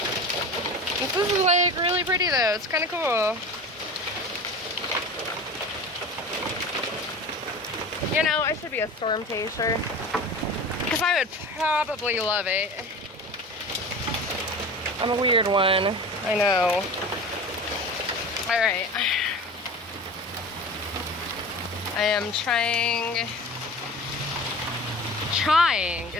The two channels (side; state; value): both; normal; correlation 0.35